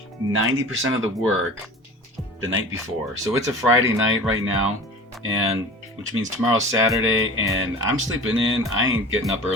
90% of the work the night before. So it's a Friday night right now, and which means tomorrow's Saturday, and I'm sleeping in. I ain't getting up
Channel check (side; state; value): both; normal; correlation 0.38